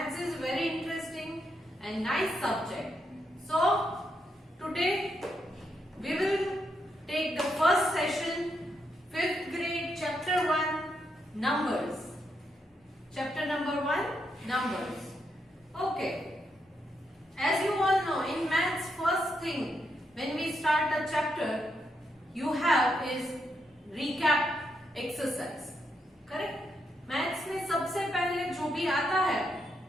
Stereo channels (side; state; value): both; normal; correlation 0.80